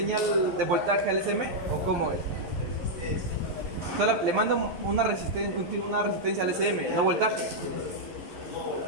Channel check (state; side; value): late; left; 12 ms